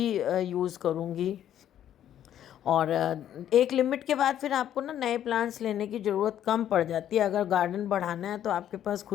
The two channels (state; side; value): quieter; right; 10.8 dB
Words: यूज़ करूँगी। और एक लिमिट के बाद फिर आपको ना नए प्लांट्स लेने की ज़रूरत कम पड़ जाती है। अगर गार्डन बढ़ाना है तो आपके पास